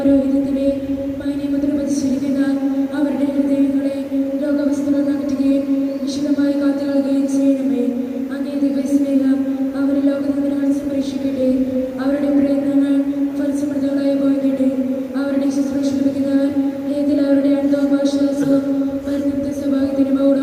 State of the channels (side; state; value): both; identical; correlation 1.00